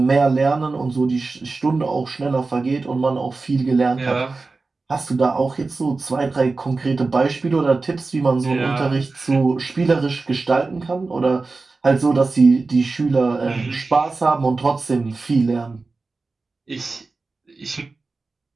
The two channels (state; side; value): quieter; left; 3.8 dB